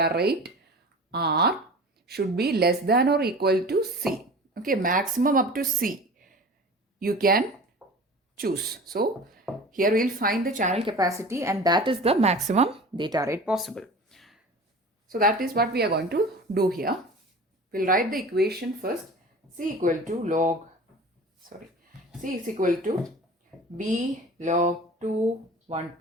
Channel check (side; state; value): both; normal; correlation 0.38